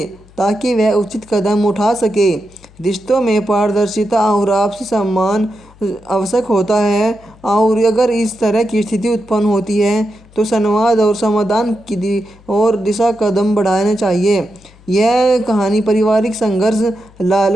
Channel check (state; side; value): noise; left; hum, 26 dB below the sound